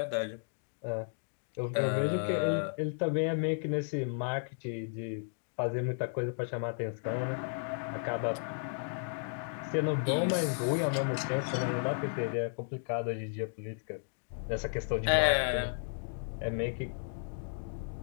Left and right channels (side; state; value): right; silent; digital silence